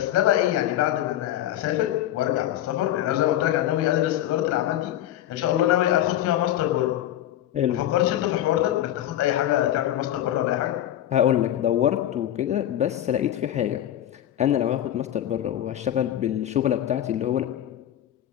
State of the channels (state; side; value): quieter; right; 12.4 dB